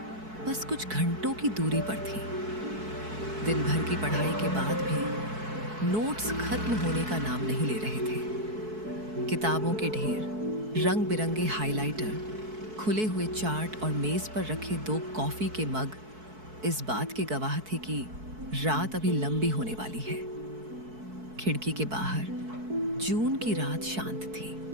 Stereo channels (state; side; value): late; left; 4.6 ms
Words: बस कुछ घंटों की दूरी पर थी। दिन भर की पढ़ाई के बाद भी नोट्स खत्म होने का नाम नहीं ले रहे थे। किताबों के ढेर, रंग बिरंगे हाइलाइटर, खुले हुए चार्ट और मेज पर रखे 2 कॉफी के मग इस बात के गवाह थे कि रात अभी लंबी होने वाली है। खिड़की के बाहर जून की रात शांत थी।